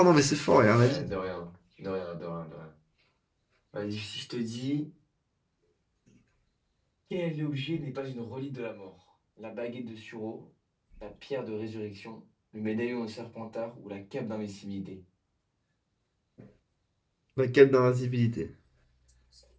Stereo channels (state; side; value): identical; both; correlation 1.00